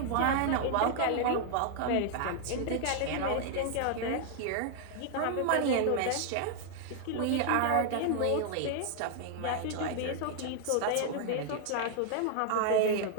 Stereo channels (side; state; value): both; different; correlation 0.00